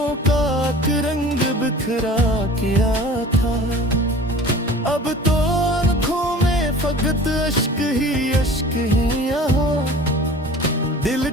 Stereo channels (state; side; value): normal; both; correlation 0.43